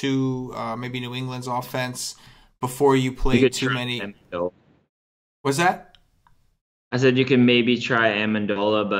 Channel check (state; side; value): identical; both; correlation 1.00